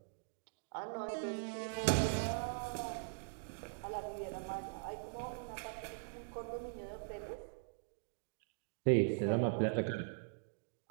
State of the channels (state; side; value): silent; left; digital silence